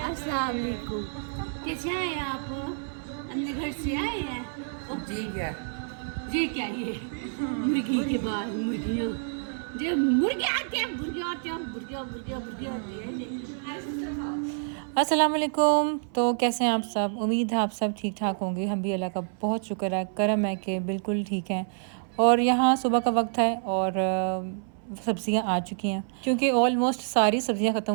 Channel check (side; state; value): left; silent; 59 dB below the other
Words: अस्सलाम वालेकुम। कैसे आए हैं आप? अपने घर से आए हैं? जी क्या? ये क्या ये मुर्गी के बाद मुर्गियाँ जो मुर्गे आते हैं मुर्गियाँ आते हैं मुर्गियाँ मुर्गियाँ मुर्गियाँ आती है अस्सलाम वालेकुम। तो कैसे हैं आप सब? उम्मीद है आप सब ठीक ठाक होंगे। हम भी अल्लाह का बहुत शुक्र है, करम है कि बिल्कुल ठीक हैं। और यहाँ सुबह का वक्त है और सब्ज़ियाँ आ चुकी हैं क्योंकि ऑलमोस्ट सारी सब्ज़ियाँ ख़त्म